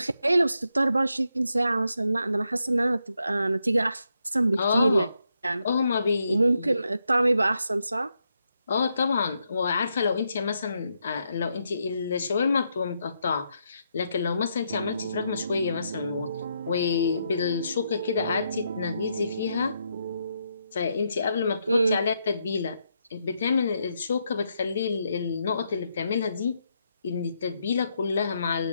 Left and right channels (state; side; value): inverted; both; correlation -0.80